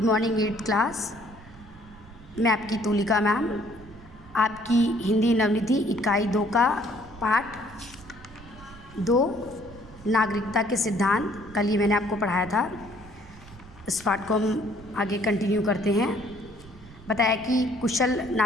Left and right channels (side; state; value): right; noise; rumble, 20 dB below the sound